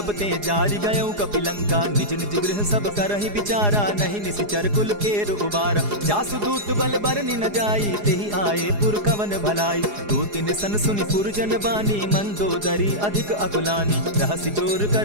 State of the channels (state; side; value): late; left; 4.8 ms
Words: ते जारि गयौ कपिलंका। निज निज गृह सब करहि विचारा, नहीं निशिचर कुल केर उबारा। जासु दूत बल बरनि न जाई, तेहि आए पुर कवन भलाई। दूतिन सन सुनि पुरजन बानी, मंदोदरी अधिक अकुलानी। रहसि जोर